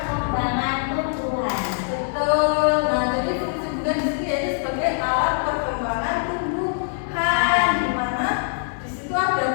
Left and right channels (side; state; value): right; silent; 57 dB below the other